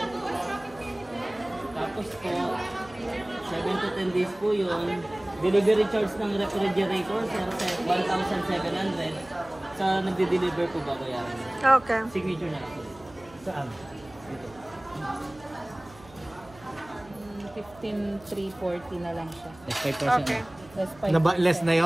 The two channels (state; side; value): noise; right; hum, 23 dB below the sound